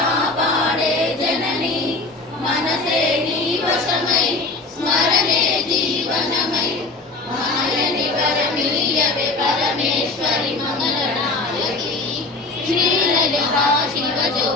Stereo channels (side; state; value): right; quieter; 3.4 dB